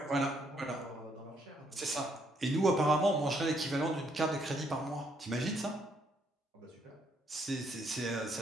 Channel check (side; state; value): both; normal; correlation 0.71